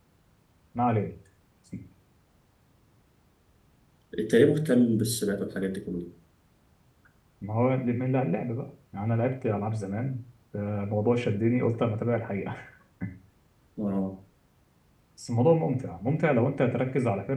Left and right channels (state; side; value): identical; both; correlation 1.00